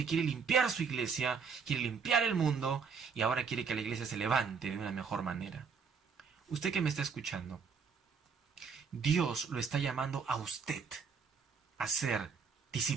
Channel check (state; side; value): quieter; left; 5.8 dB